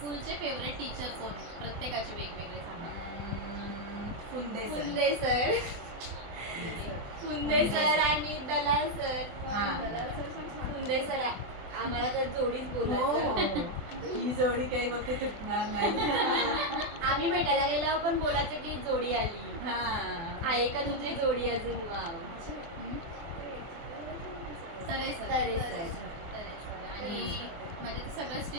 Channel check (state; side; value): late; left; 24 ms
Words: फेवरेट टीचर कोण? प्रत्येकाचे वेगवेगळे सांगा. Phunde sir. Phunde sir. Phunde sir आणि दलाल सर. हा. दलाल सर पण छान. फुंदे सर आम्हाला तर जोडीच हो बोलायचं. हो. ही जोडी काही बघते तुटणार नाही. आम्ही भेटायला गेल्यावर पण बोलायचं की जोडी आली. हा. आहे का तुझी जोडी अजून? वाव. तरे सर. तरे सर. तरे सर. आणि म्हणजे ते सगळेच